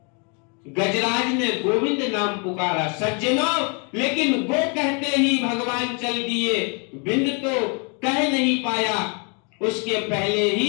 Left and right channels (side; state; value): right; quieter; 35.6 dB